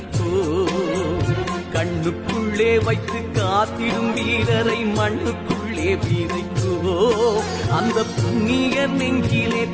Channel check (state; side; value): identical; both; correlation 1.00